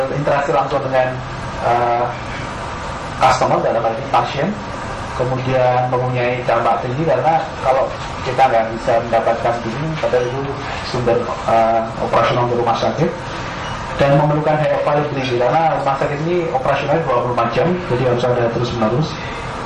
langsung dengan customer, dalam hal ini pasien. Kemudian mempunyai dampak tinggi karena kalau kita nggak bisa mendapatkan billing, padahal itu sumber operasional untuk rumah sakit, dan memerlukan high availability karena rumah sakit ini operasionalnya 24 jam, jadi harus ada terus menerus.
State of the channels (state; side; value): identical; both; correlation 1.00